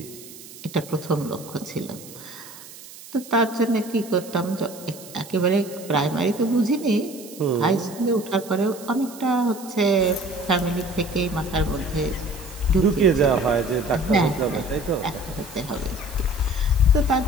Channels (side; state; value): right; noise; hiss, 17 dB below the sound